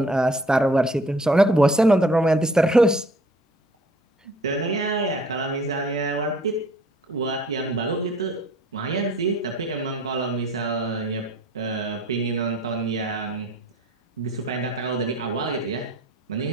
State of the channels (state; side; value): normal; both; correlation 0.53